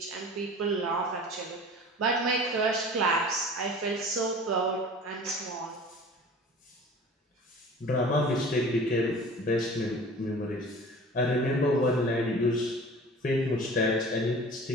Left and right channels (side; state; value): both; normal; correlation 0.42